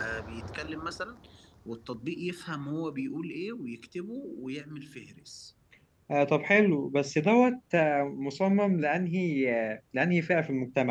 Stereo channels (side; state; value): both; identical; correlation 1.00